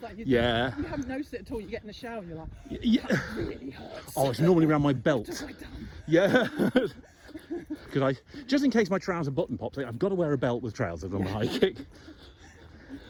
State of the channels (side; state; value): both; identical; correlation 1.00